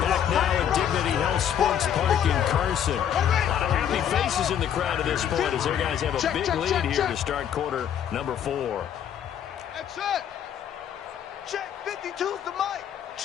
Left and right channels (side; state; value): right; quieter; 9.4 dB